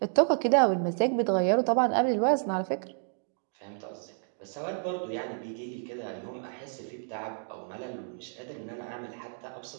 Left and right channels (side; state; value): left; silent; 58 dB below the other